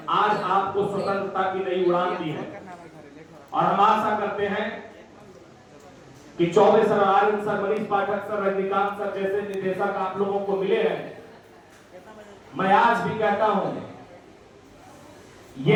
आज आपको स्वतंत्रता की नई उड़ान दी है। और हम आशा करते हैं कि चौबे सर, आर्यन सर, मनीष पाठक सर, रजनीकांत सर जैसे निदेशक आप लोगों को मिले हैं। मैं आज भी कहता हूं,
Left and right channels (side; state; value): both; identical; correlation 1.00